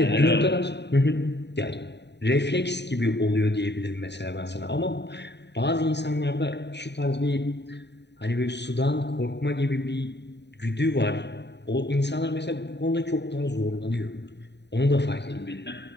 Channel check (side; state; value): right; late; 0.50 ms